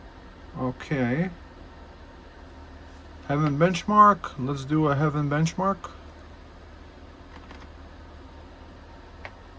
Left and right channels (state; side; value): identical; both; correlation 1.00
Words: Okay. Heaven benchmark, let's do a heaven benchmark.